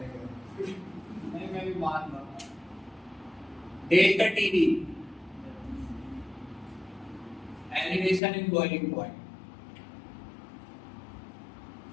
नहीं मैं भी मान रहा हूँ। Delta TV elevation in boiling point.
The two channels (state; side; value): drops out; right; at 8.2 s